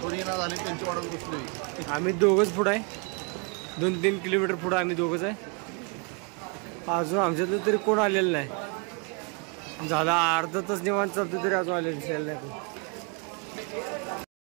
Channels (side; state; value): left; quieter; 34.0 dB